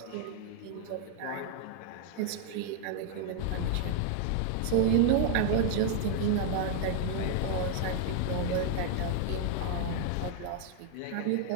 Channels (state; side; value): different; both; correlation 0.00